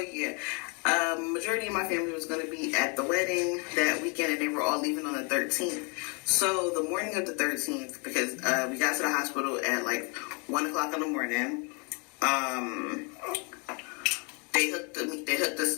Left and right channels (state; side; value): quieter; right; 34.1 dB